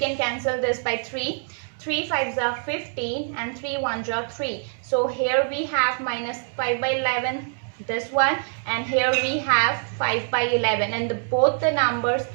cancel this by 3. 3 5s are 15 and 3 1s are 3. So here we have minus 5 by 11, this one, and here we have 5 by 11, and both the numbers,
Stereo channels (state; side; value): silent; left; 62 dB below the other